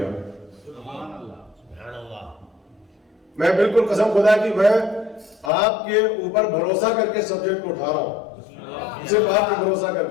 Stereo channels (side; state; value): right; drops out; at 5.5 s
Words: میں بالکل قسم خدا کی میں آپ کے اوپر بھروسہ کر کے سبجیکٹ کو اٹھا رہا ہوں، صرف آپ پہ بھروسہ کر